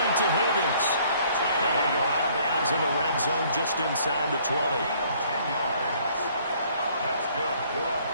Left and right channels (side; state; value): both; inverted; correlation -0.60